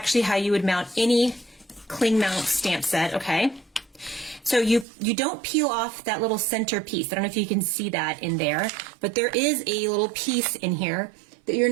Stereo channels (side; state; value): left; drops out; at 4.9 s